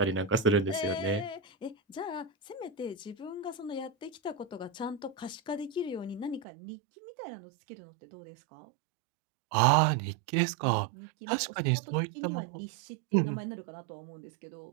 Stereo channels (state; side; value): drops out; left; at 6.5 s